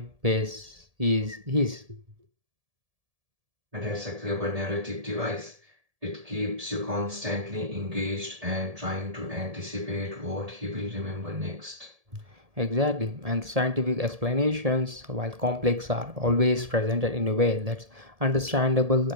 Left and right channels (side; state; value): left; late; 1.7 ms